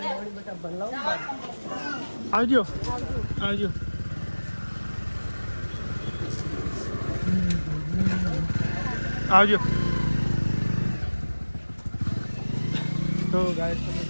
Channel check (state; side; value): inverted; both; correlation -1.00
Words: આવજો આવજો આવજો તો ગાઈસ તમે